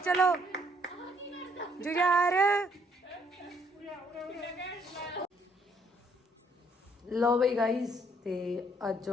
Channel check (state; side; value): normal; both; correlation 0.67